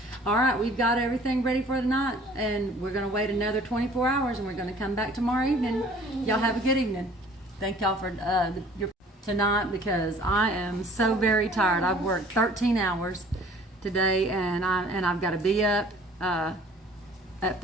All right, we've got everything ready for tonight, and we're gonna wait another 24 hours, and we're gonna come back tomorrow evening. Y'all have a good evening. Thank y'all for your tonight, because I am so very tired. I've worked 13 hours today, and I've got to be up at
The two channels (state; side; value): normal; both; correlation 0.52